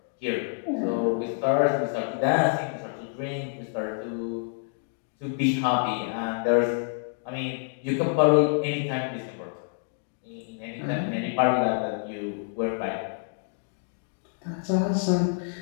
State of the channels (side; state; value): right; silent; digital silence